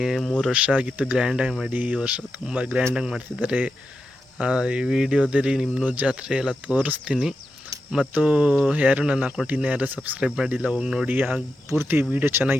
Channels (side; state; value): both; normal; correlation 0.88